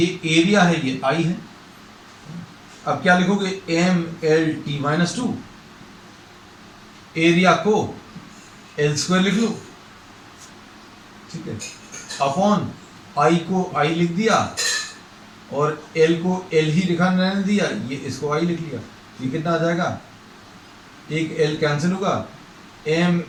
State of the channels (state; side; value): identical; both; correlation 1.00